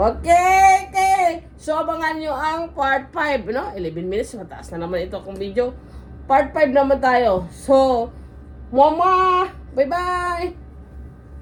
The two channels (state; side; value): identical; both; correlation 1.00